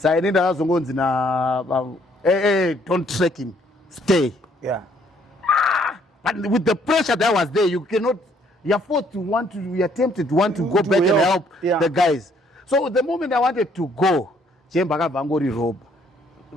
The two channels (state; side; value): normal; both; correlation 0.65